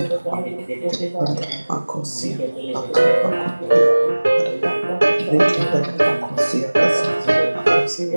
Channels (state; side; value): inverted; both; correlation -1.00